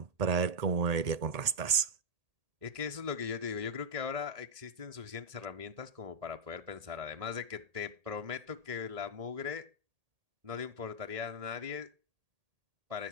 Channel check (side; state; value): left; late; 1.8 ms